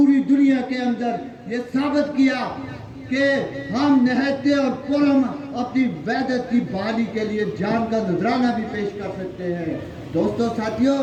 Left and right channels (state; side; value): identical; both; correlation 1.00